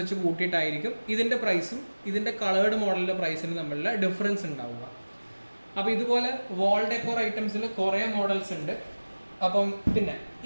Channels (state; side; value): inverted; both; correlation -1.00